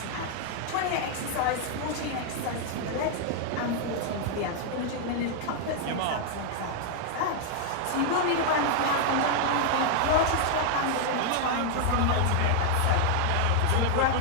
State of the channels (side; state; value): both; different; correlation 0.00